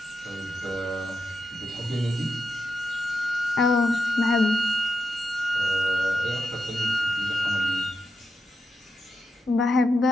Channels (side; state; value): both; normal; correlation 0.87